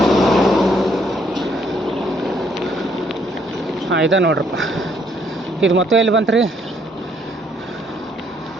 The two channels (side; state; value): both; normal; correlation 0.68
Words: ಹಾಂ ಇದೆ ನೋಡ್ರಪ್ಪ. ಇದು ಮತ್ತೆ ಎಲ್ಲಿ ಬಂತು ರೀ?